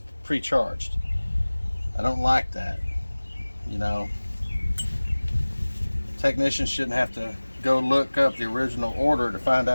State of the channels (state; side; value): inverted; both; correlation -1.00